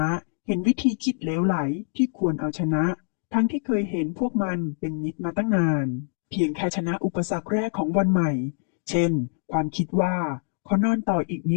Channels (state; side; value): silent; right; digital silence